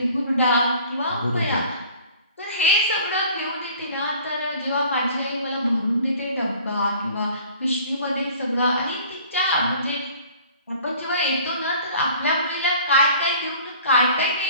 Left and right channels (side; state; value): both; inverted; correlation -0.49